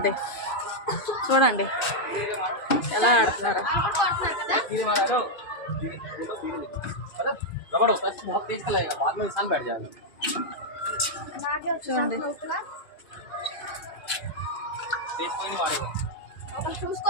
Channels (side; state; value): right; late; 2.4 ms